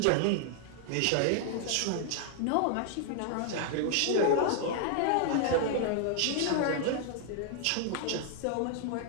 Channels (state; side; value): different; both; correlation 0.00